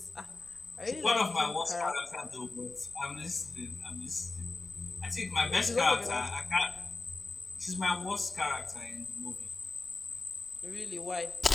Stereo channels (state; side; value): quieter; right; 3.4 dB